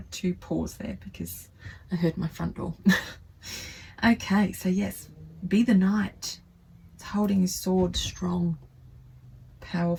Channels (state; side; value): identical; both; correlation 1.00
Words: to pause there because I heard my front door. Okay, so yes, be the Knight. It's holding his sword strong,